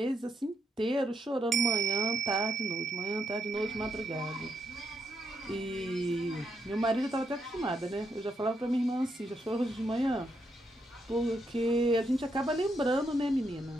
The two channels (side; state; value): both; normal; correlation 0.79